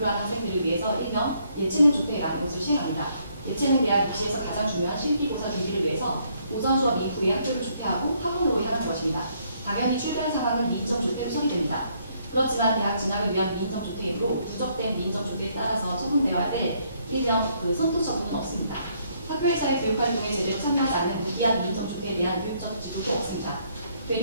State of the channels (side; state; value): both; inverted; correlation -0.70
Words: 한 학생들을 위해서 일명 예체능 조퇴라는 것을 시행합니다. 예체능 대학 입시에서 가장 중요한 실기고사 준비를 위해서 오전 수업 이후에 학교를 조퇴하고 학원으로 향하는 것입니다. 당연히 출결 상황은 미인정 조퇴로 처리됩니다. 그렇지만 대학 진학을 위한 미인정 조퇴이므로 누적된 미인정 조퇴에 따라서 처분되어야 할 일명 선도 처분은 없습니다. 학교에서의 교육활동에 제대로 참여하지 않는 무기한 미인정 조퇴에 대한 교육적 지도도 없습니다.